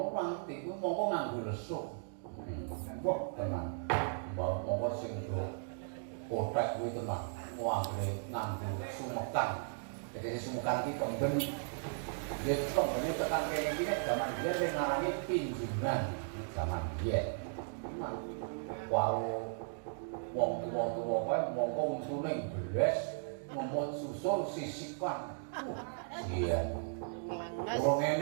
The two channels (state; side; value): silent; left; digital silence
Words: ora ngerti ku mongko nganggo lesuk wah tenan mongko sing do kotek kuwi tenan nganggo sumekan. Jadi sumukan iki kemben ya kembene tekan kene iki nek zaman biyen sing ngarani pinjungan zaman biyen. Wau wong tuwa-tuwa kae mongko untune beles ngemot susul sisikan. Iya. Wong